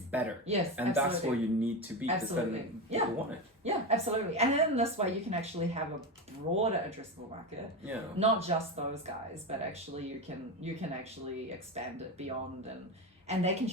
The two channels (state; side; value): normal; both; correlation 0.17